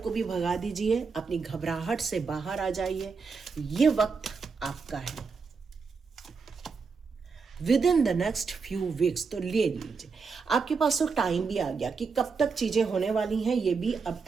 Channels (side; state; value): left; quieter; 5.0 dB